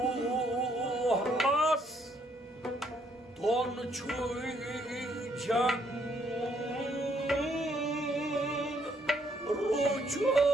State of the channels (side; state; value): both; normal; correlation 0.69